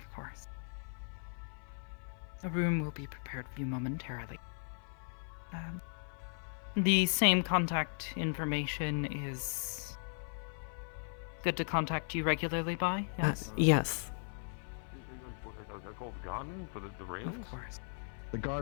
course. A room will be prepared for you momentarily. The same contact information is good to contact you regularly by? Yes? Yes. Of course. The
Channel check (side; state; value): right; silent; 53 dB below the other